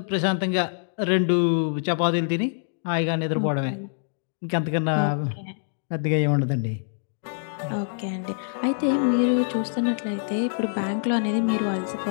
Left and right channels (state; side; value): silent; right; digital silence